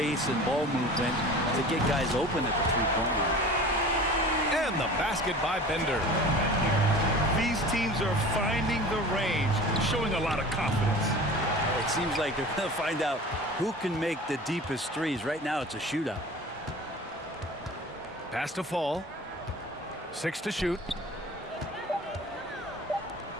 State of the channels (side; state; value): both; normal; correlation 0.40